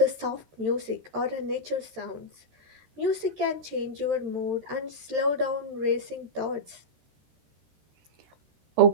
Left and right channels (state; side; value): late; left; 13 ms